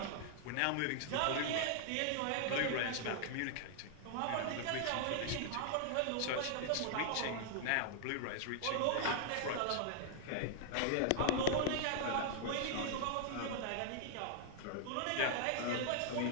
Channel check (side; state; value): both; different; correlation 0.00